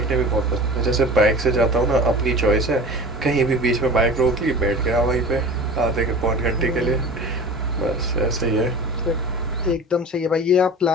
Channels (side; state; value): both; normal; correlation 0.37